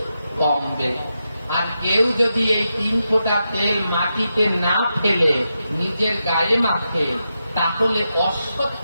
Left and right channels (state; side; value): inverted; both; correlation -0.87